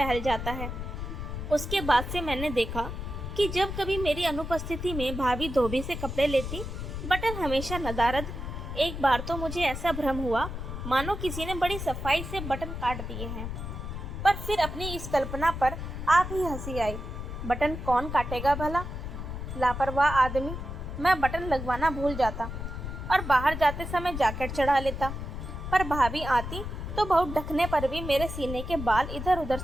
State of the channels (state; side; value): noise; left; rumble, 6 dB below the sound